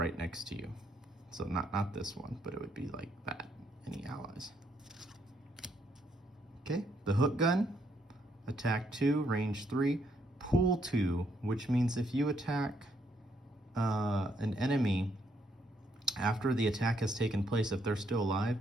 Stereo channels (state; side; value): normal; both; correlation 0.73